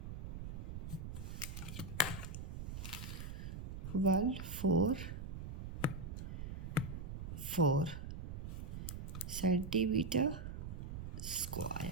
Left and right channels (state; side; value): noise; right; rumble, 6 dB below the sound